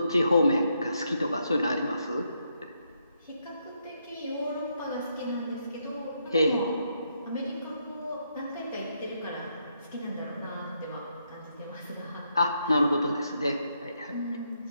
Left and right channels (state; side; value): inverted; both; correlation -0.78